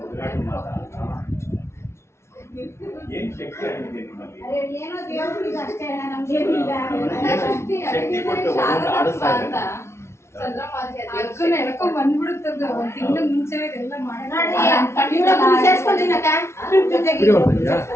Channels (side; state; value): right; late; 0.13 ms